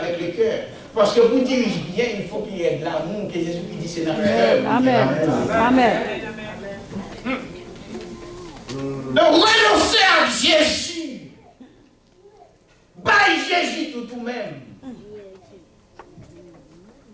le cœur. Parce que pour diriger bien, il faut qu'il y ait de l'amour, que Jésus dit c'est dans le cœur. Amen. Amen. Donc renoncer à Jésus. Bye Jésus tout même.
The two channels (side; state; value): both; identical; correlation 1.00